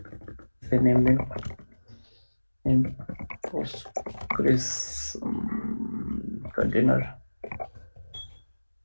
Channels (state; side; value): inverted; both; correlation -1.00